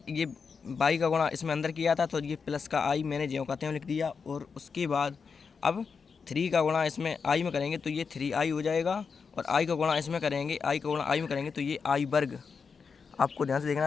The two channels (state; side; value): quieter; right; 5.6 dB